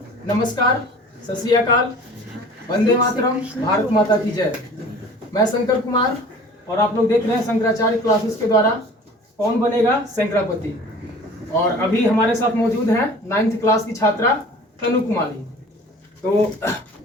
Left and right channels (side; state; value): both; normal; correlation 0.45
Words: नमस्कार, सत श्री अकाल, वंदे मातरम, भारत माता की जय। मैं शंकर कुमार और आप लोग देख रहे हैं शंकराचार्य क्लासेस के द्वारा कौन बनेगा शंकरापति। और अभी हमारे साथ मौजूद हैं 9th क्लास की छात्रा तनु कुमारी। तो